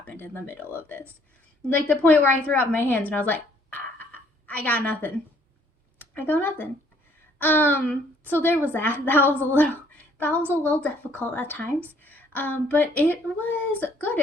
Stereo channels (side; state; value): both; normal; correlation 0.62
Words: in the middle of this. Like the point where I threw up my hands and I was like, I got nothing. I got nothing. So there was that. That was a little difficult at times. But it was good.